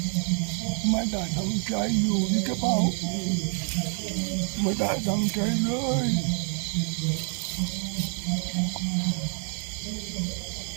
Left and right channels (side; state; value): left; quieter; 37.5 dB